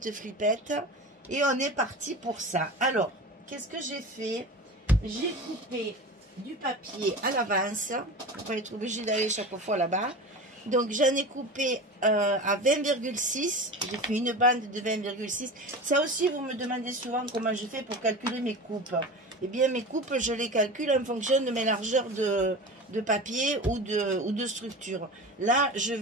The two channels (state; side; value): normal; both; correlation 0.31